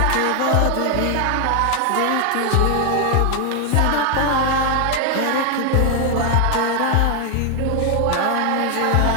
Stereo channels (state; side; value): different; both; correlation 0.00